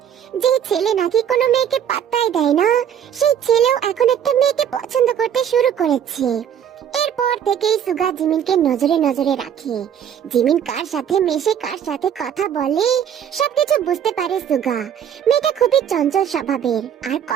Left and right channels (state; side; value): quieter; left; 9.1 dB